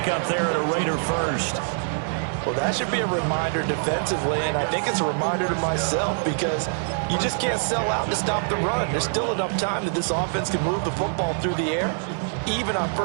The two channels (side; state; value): left; silent; digital silence